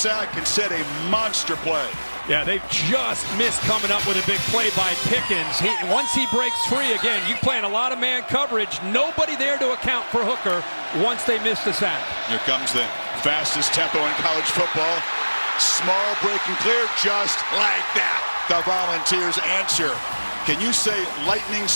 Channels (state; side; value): inverted; both; correlation -1.00